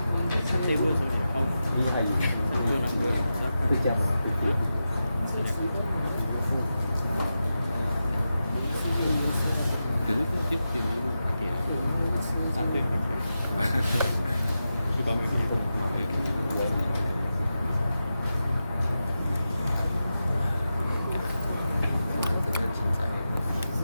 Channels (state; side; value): inverted; both; correlation -0.91